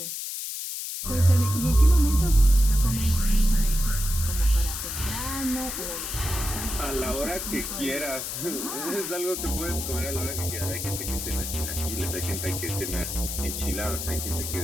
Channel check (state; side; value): noise; left; hiss, 5 dB below the sound